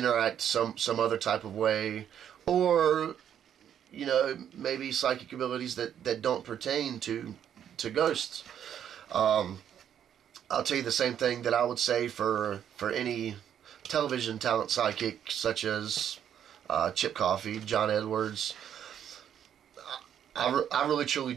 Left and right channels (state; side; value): quieter; left; 9.5 dB